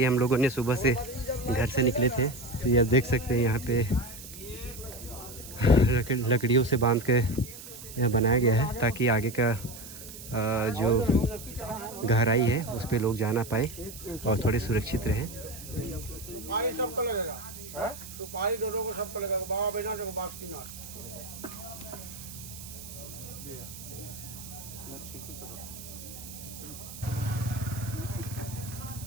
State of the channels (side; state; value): right; noise; hiss, 14 dB below the sound